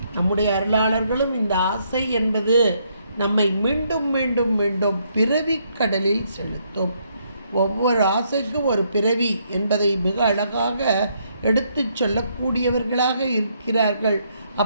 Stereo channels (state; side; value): inverted; both; correlation -0.73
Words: நம்முடைய அருளாளர்களும் இந்த ஆசை என்பது நம்மை மீண்டும் மீண்டும் மீண்டும் பிறவி கடலில் செலுத்தும். ஒவ்வொரு ஆசைக்கும் ஒரு பிறவி என்பதை மிக அழகாக எடுத்து சொல்லக்கூடியவர்களாக இருக்கிறார்கள்.